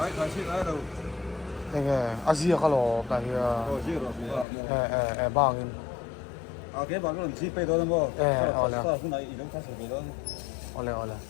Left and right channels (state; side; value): drops out; right; at 4.5 s